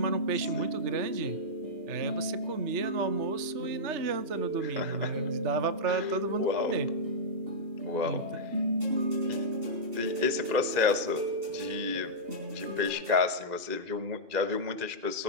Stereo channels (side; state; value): left; late; 2.0 ms